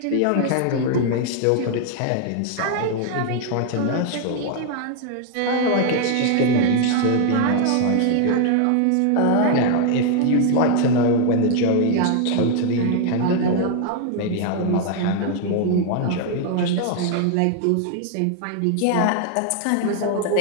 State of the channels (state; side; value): different; both; correlation 0.00